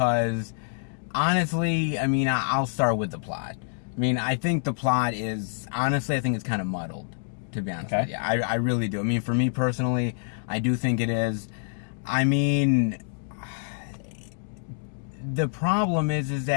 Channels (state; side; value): silent; right; digital silence